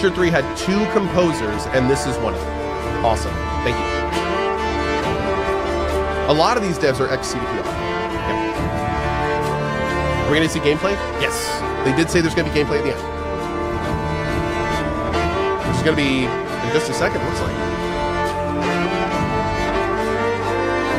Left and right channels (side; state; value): both; identical; correlation 1.00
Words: 3 had 2 composers, and this is one of them. Awesome. Thank you. A lot of these devs are ex-CDPR. Yeah. Are we going to see gameplay? Yes. They did say there's going to be gameplay at the end. Which is going to be in just a second, it looks like.